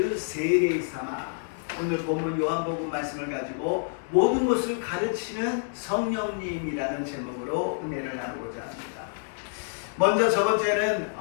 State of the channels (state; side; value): silent; right; digital silence